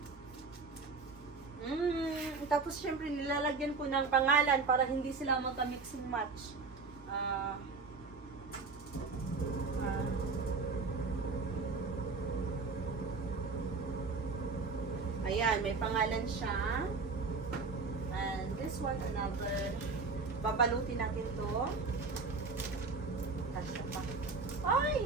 Tapos, syempre, nilalagyan ko ng pangalan para hindi sila magka-mix and match. Ayan, may pangalan siya. And this one, another. Babalutin natin to. Kasya pa. Ay,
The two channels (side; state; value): left; quieter; 4.2 dB